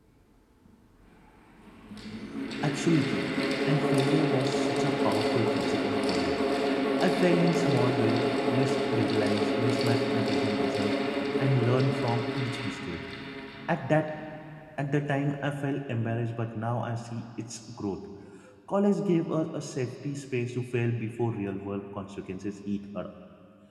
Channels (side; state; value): both; identical; correlation 1.00